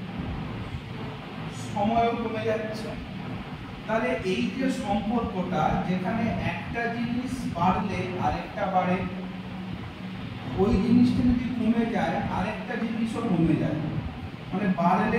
সময়ও কমে যাচ্ছে। তাহলে এই যে সম্পর্কটা, যেখানে একটা জিনিস বাড়লে আরেকটা বাড়ে, ওই জিনিসটা যদি কমে যায় আরেকটা জিনিসও কমে যায়। মানে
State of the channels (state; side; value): identical; both; correlation 1.00